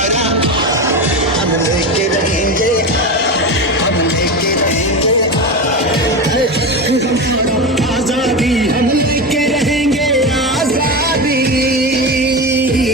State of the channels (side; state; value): both; normal; correlation 0.21